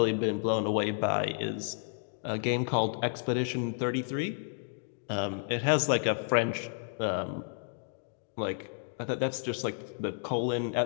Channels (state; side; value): silent; right; digital silence